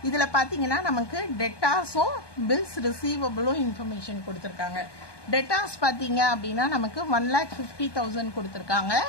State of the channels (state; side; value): late; right; 1.2 ms